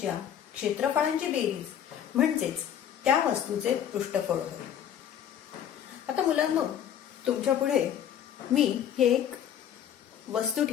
क्षेत्रफळांची बेरीज म्हणजेच त्या वस्तूचे पृष्ठफळ होय. आता मुलांनो, तुमच्या पुढे मी हे एक वस्तू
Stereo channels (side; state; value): right; quieter; 9.6 dB